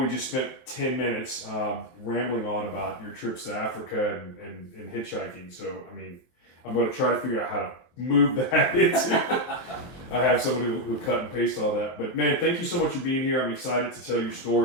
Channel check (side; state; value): right; late; 23 ms